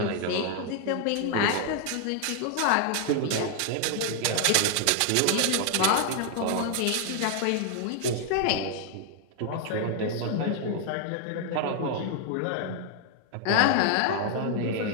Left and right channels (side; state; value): both; different; correlation 0.00